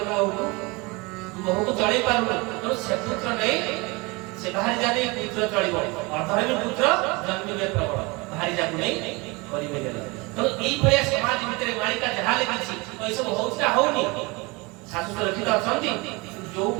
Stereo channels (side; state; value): left; quieter; 26.1 dB